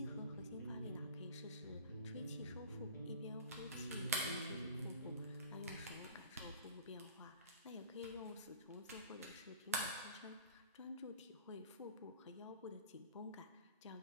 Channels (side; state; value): both; inverted; correlation -0.41